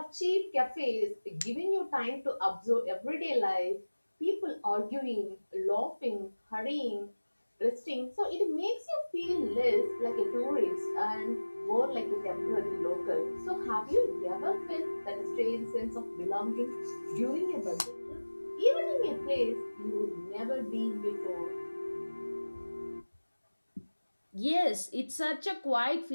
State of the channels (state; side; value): inverted; both; correlation -1.00